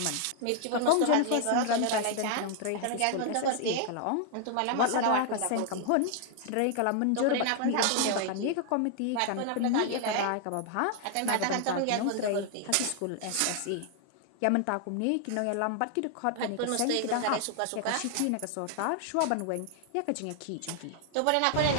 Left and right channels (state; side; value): different; both; correlation 0.00